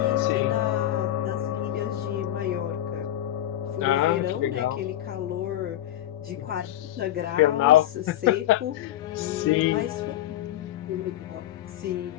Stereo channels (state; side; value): quieter; right; 12.9 dB